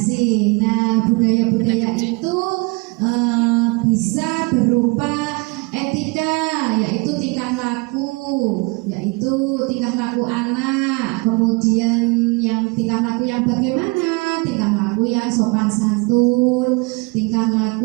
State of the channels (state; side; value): quieter; left; 28.1 dB